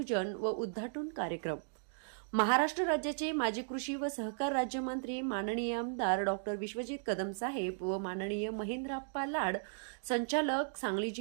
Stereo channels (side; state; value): left; silent; digital silence